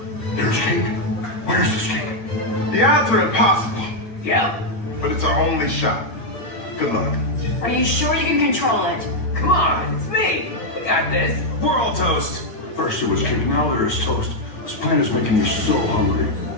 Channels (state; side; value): late; right; 8.9 ms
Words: There's cake. Where's this cake? The odds are impossible, Yeah. but it's our only shot. Good luck. Are you sure you can control it? Come on, it's me. I got this. We're all toast. First it was cake, now there is toast. This plan is making me so hungry.